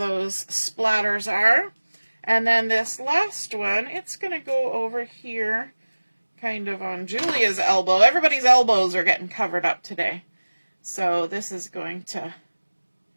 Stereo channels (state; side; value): inverted; both; correlation -1.00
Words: splatters are. And then this last one, it's going to go over here, kind of on Julia's elbow. Everybody's elbows are getting covered up today. So this is going to,